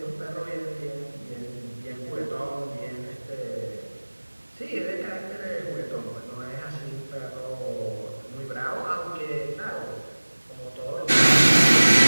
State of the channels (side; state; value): both; inverted; correlation -1.00